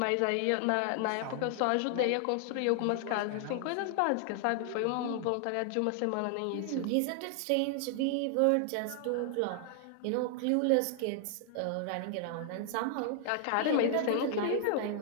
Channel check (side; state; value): both; different; correlation 0.00